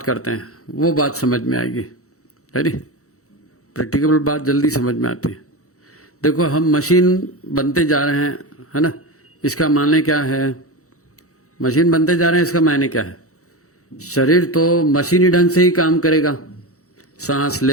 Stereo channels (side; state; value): right; late; 0.65 ms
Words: करते हैं, वो बात समझ में आएगी। है नी? प्रैक्टिकल बात जल्दी समझ में आती है। देखो, हम मशीन बनते जा रहे हैं, है ना? इसका माने क्या है? मशीन बनते जा रहे हैं, इसका मायने क्या है? शरीर तो मशीनी ढंग से ही काम करेगा, सांस